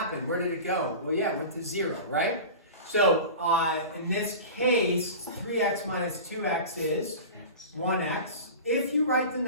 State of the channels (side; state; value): both; inverted; correlation -0.33